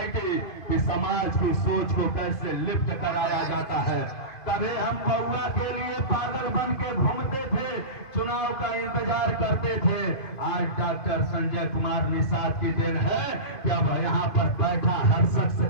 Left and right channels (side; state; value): right; late; 2.5 ms